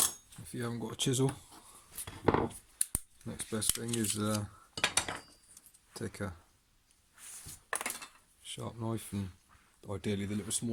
If you haven't got a chisel, next best thing is take a sharp knife, and ideally the little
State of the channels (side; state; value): both; identical; correlation 1.00